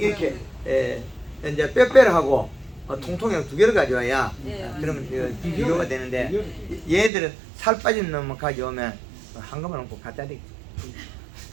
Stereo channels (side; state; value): left; drops out; at 7.1 s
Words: 이제 뼈뼈하고 통통이랑 두 개를 가져와야 네, 그러면 맞아요. 비교가 되는데 얘들은 살 빠진 놈만 가져오면 한 것만 놓고 갖다 대기